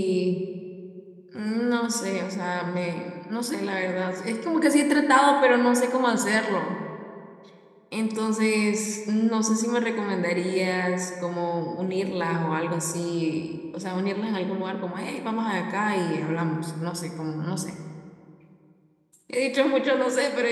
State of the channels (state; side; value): identical; both; correlation 1.00